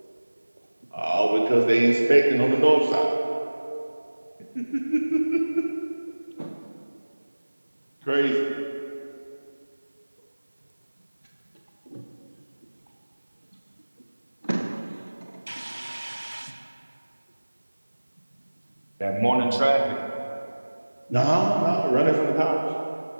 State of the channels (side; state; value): both; inverted; correlation -1.00